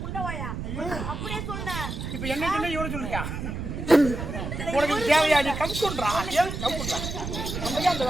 இப்ப என்ன சொன்ன இவரை சொல்றியா? உனக்கு தேவையா? நீ கம்குன்றா ஏன் கம்குன்றா? அந்த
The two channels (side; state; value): right; noise; rumble, 5 dB below the sound